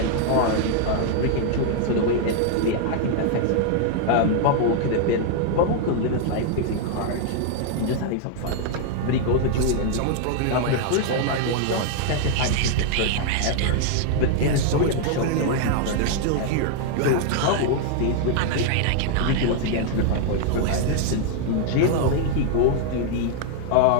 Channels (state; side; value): different; both; correlation 0.00